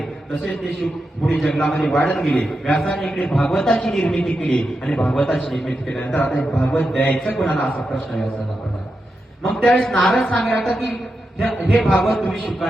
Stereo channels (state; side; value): normal; both; correlation 0.88